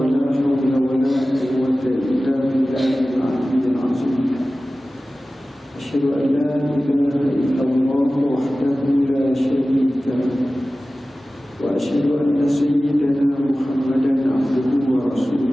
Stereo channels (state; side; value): normal; both; correlation 0.96